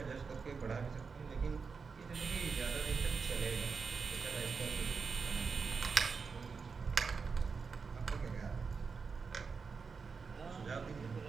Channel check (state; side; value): quieter; left; 5.2 dB